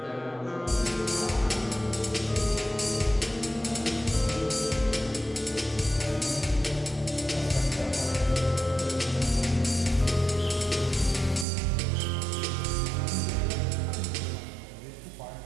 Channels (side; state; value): left; drops out; at 11.5 s